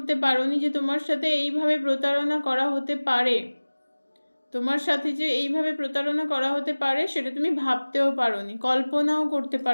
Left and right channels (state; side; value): inverted; both; correlation -1.00